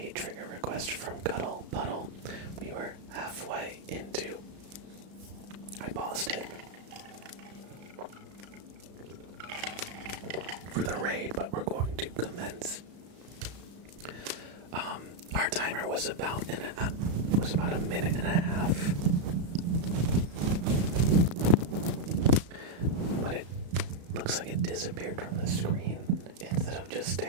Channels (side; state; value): left; late; 34 ms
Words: trigger request from Cuddle Puddle. We were halfway into. I paused it for the raid, but we're going to commence. Our timer was about a minute and a half, but it looks like it disappeared from the screen instead of just